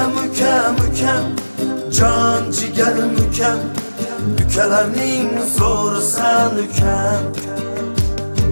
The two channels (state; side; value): inverted; both; correlation -1.00